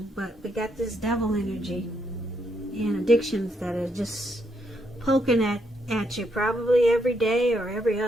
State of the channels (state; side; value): normal; both; correlation 0.76